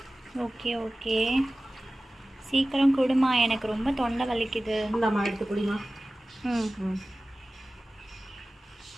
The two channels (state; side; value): normal; both; correlation 0.97